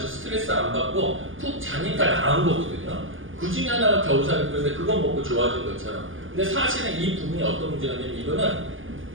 스트레스 안 받고 푹 자니까 나은 거거든요. 그 중에 하나가 겨우살이 풀인데 그거 먹고 좋아진 것처럼. 근데 사실은 이 부분이 어떤 문제가 있냐면 이거는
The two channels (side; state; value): left; late; 0.58 ms